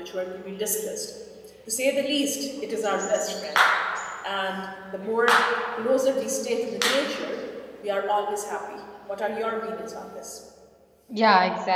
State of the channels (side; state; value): both; identical; correlation 1.00